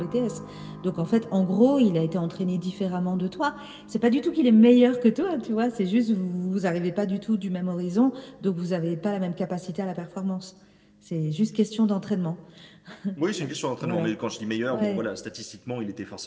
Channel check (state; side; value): identical; both; correlation 1.00